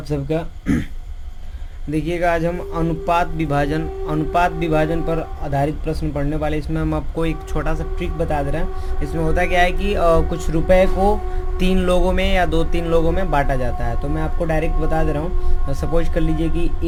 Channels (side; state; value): both; identical; correlation 1.00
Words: आप सबका। देखिएगा, आज हम अनुपात विभाजन पर आधारित प्रश्न पढ़ने वाले। इसमें हम आपको एक छोटा सा ट्रिक बता दे रहे हैं। इसमें होता क्या है कि कुछ रुपए को 3 लोगों में या 2-3 लोगों में बांटा जाता है। तो मैं आपको डायरेक्ट बता दे रहा हूँ। सपोज कर लीजिए कि